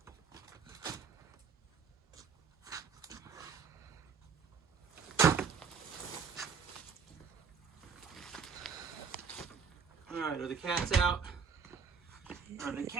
All right, are the cats out? Are the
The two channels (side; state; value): left; quieter; 6.2 dB